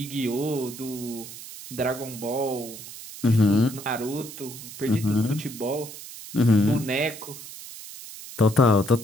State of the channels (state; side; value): noise; right; hiss, 13 dB below the sound